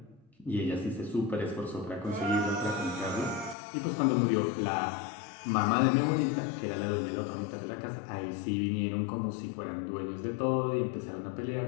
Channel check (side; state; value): right; drops out; at 3.6 s